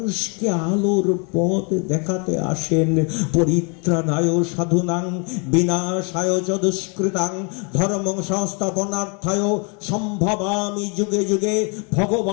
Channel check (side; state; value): right; quieter; 35.1 dB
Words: আলোর পথ দেখাতে আসেন। পরিত্রাণায় সাধুনাং বিনাশায় চ দুষ্কৃতাং ধর্মং সংস্থাপনার্থায় সম্ভবামি যুগে যুগে।